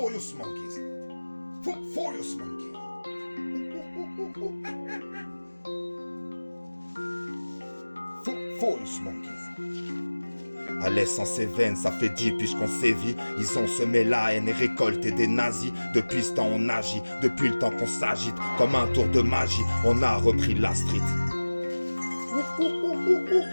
monkeys. Furious monkeys. Furious monkeys. À l'essence et veine, ça fait 10 piges qu'on sévit. Ils ont semé la haine et récolté des nazis. Depuis ce temps on agit, depuis le temps qu'on s'agite. Comme un tour de magie, on a repris la street.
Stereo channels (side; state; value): both; inverted; correlation -1.00